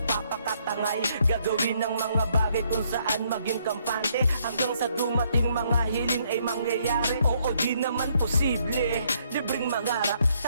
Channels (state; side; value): inverted; both; correlation -0.70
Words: gagawin ng mga bagay kung saan maging kampante, hanggang sa dumating mga hiling ay mangyayari. Oo, di naman posible, libreng mangarap,